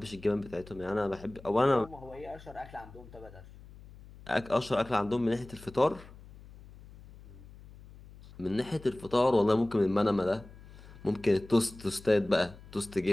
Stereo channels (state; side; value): noise; left; hum, 19 dB below the sound